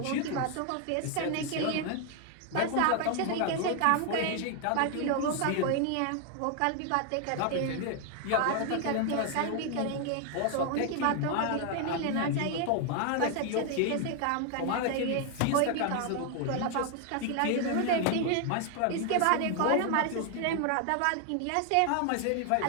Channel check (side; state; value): both; different; correlation 0.00